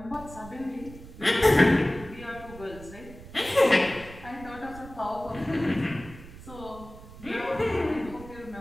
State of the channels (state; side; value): noise; right; rumble, 16 dB below the sound